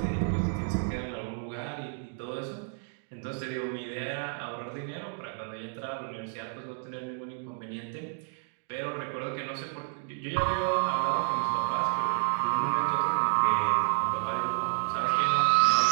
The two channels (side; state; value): left; silent; 58 dB below the other